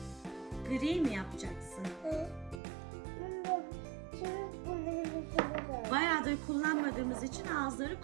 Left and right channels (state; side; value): drops out; left; at 2.6 s